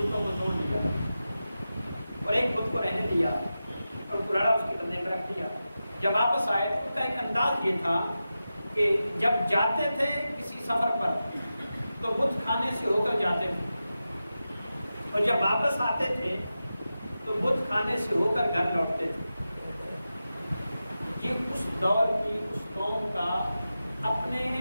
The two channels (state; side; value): inverted; both; correlation -0.92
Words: کو توڑ دیا اور ایک بت کو رہنے دیا اور کلاڑا اس کے کندھے پہ رکھ دیا. جب واپس آئے تو ان کا ایک انداز یہ تھا کہ جب جاتے تھے کسی سفر پر تو بت خانے سے ہو کر جاتے تھے اور جب واپس آتے تھے تو بت خانے سے ہو کر گھر لوٹتے تھے. یہ اس دور کی اس قوم کا